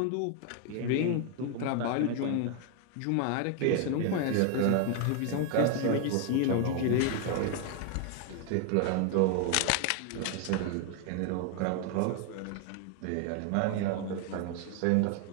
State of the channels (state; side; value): different; both; correlation 0.01